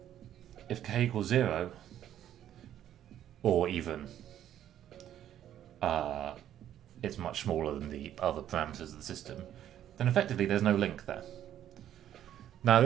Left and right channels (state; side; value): quieter; left; 11.1 dB